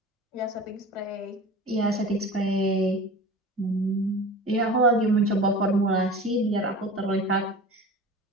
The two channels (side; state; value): both; normal; correlation 0.36